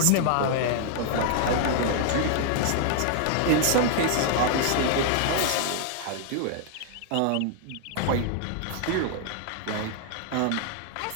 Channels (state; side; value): different; both; correlation 0.00